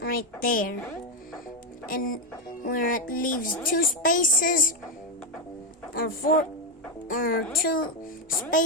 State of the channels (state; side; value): normal; both; correlation 0.06